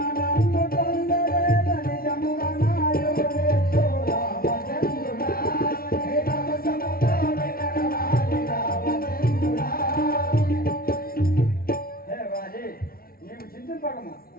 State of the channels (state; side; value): late; right; 0.43 ms